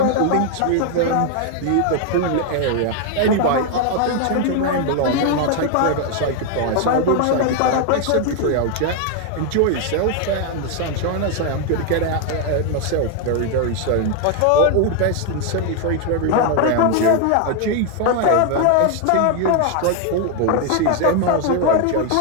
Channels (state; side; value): different; both; correlation 0.01